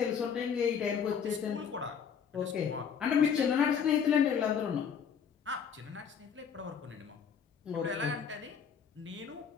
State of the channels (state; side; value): quieter; right; 7.1 dB